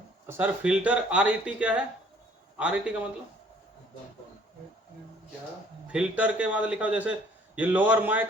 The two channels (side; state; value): both; normal; correlation 0.58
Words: Sir filter RET क्या है? आरईटी का मतलब फिल्टर के बाद लिखा हो, जैसे ये lower mic